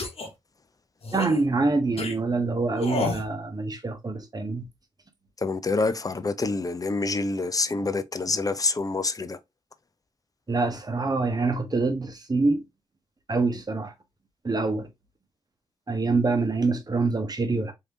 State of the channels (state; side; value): normal; both; correlation 0.72